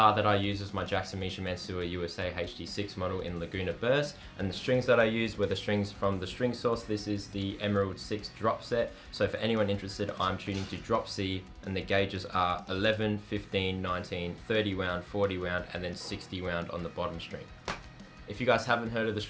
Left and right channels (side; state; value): both; identical; correlation 1.00